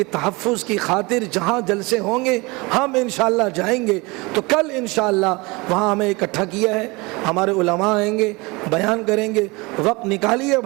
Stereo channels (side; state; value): left; quieter; 25.0 dB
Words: تحفظ کی خاطر جہاں جلسے ہوں گے ہم انشاءاللہ جائیں گے۔ تو کل انشاءاللہ وہاں ہمیں اکٹھا کیا ہے، ہمارے علماء آئیں گے، بیان کریں گے، وقت نکالیے